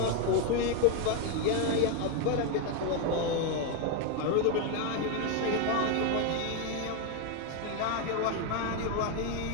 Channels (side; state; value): both; different; correlation 0.01